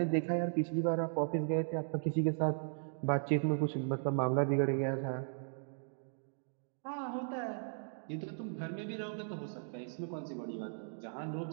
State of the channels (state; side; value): silent; left; digital silence